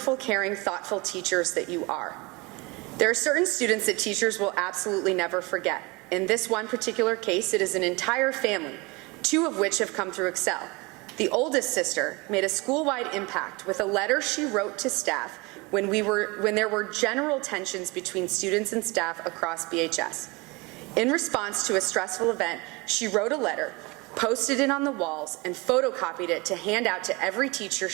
caring, thoughtful teachers that you are. There are certain students that teachers will absolutely never forget. In this one particular case, it is an entire family, 2 of which have come through Excel. The oldest sister made a school-wide impact with a letter she wrote to staff when there were general tensions between students and staff across BHS. In response to a stressful event, she wrote a letter, posted it on the walls, and photocopied it to hand out to every teacher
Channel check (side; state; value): left; quieter; 25.7 dB